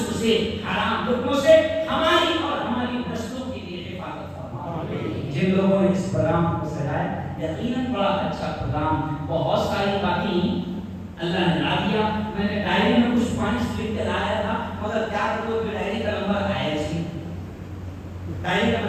سے، حرام لقموں سے ہماری اور ہماری نسلوں کے لیے حفاظت فرما، جن لوگوں نے اس پروگرام کو سجایا یقیناً بڑا اچھا پروگرام، بہت ساری باتیں اللہ نے لا دیا، میں نے ڈائری میں کچھ پوائنٹس لکھ کے لایا تھا مگر کیا کروں کہ ڈائری کا نمبر آیا ہی، ڈائری کا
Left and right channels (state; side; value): identical; both; correlation 1.00